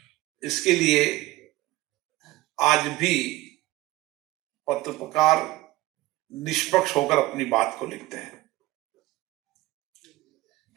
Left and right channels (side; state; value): left; quieter; 18.2 dB